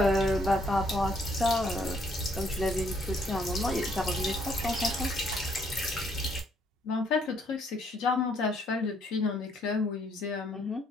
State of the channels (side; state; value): both; normal; correlation 0.69